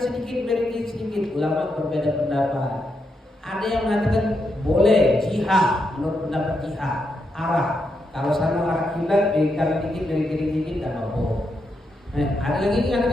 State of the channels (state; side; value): normal; both; correlation 0.82